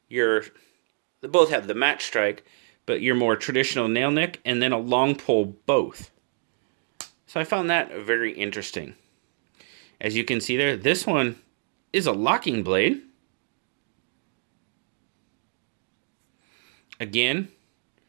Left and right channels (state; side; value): silent; left; digital silence